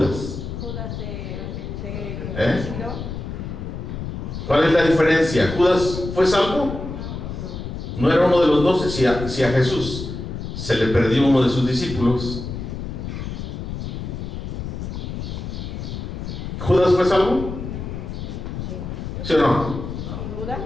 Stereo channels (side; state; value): left; noise; rumble, 6 dB below the sound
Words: Judas ¿Cuál es la diferencia? ¿Judas fue salvo? No era uno de los 12. Si a Jesús se le perdió uno de sus discípulos, ¿Judas fue salvo? ¿Sí o no?